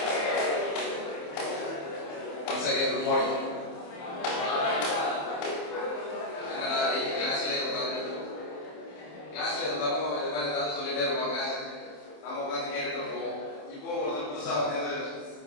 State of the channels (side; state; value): right; late; 27 ms